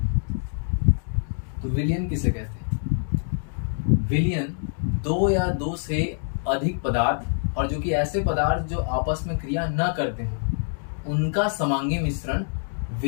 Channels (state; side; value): silent; right; digital silence